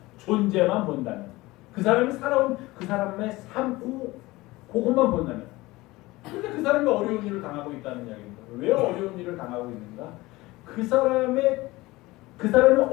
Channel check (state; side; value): quieter; right; 20.1 dB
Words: 존재만 본다면 그 사람이 살아온 그 사람의 삶 그것만 본다면 근데 그 사람이 어려운 일을 당하고 있다는 이야기입니다. 왜 어려운 일을 당하고 있는가? 그 사람이